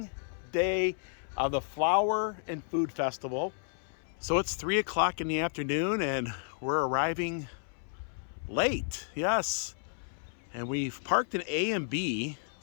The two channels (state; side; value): silent; right; 56 dB below the other